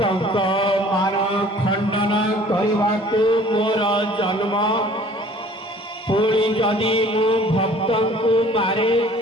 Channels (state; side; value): normal; both; correlation 0.51